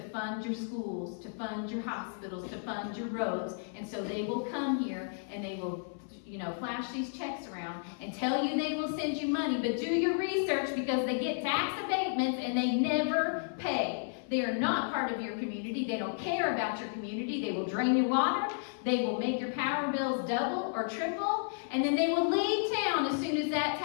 fund your schools, to fund your hospitals, to fund your roads. And so they will come here and they will, flash these checks around and tell you they will send you money. But do your research, because they get tax abatements and they never pay. They are not part of your community. They don't care about your community. They will drain your water. They will make your power bills double or triple. And then they will leave town as soon as that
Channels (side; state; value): right; silent; 56 dB below the other